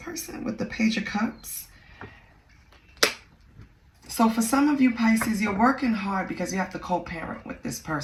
with the Page of Cups? So for some of you Pisces, you're working hard because you have to co-parent with this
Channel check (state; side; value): identical; both; correlation 1.00